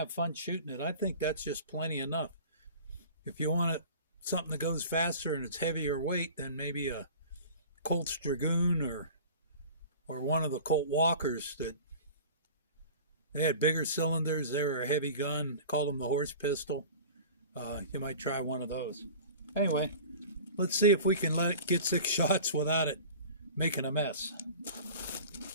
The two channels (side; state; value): both; inverted; correlation -0.40